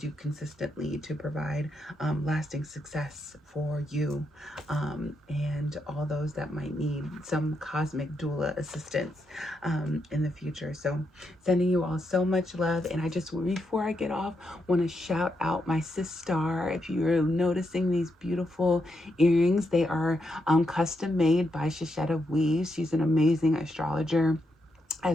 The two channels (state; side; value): normal; both; correlation 0.82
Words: consistently to provide lasting success for you and all those that might need some cosmic doula assistance in the future. So sending you all so much love. And I just, before I get off, want to shout out my sis Star. If you're noticing these beautiful earrings, they are custom made by Shishetta Weaves. She's an amazing astrologer